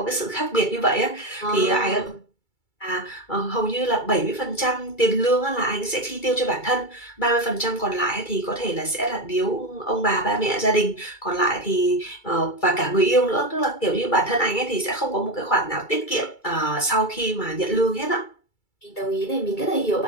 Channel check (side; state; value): right; late; 2.3 ms